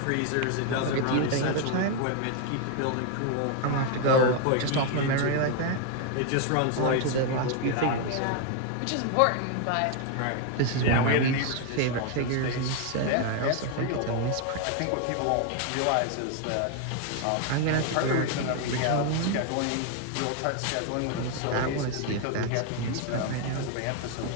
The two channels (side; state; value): both; different; correlation 0.01